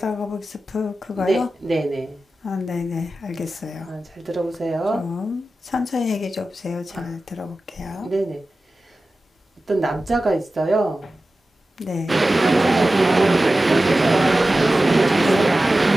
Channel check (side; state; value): both; normal; correlation 0.95